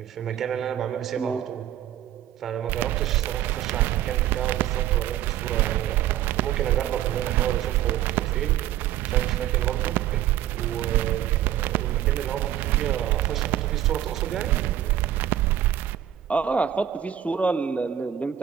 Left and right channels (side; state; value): left; quieter; 11.6 dB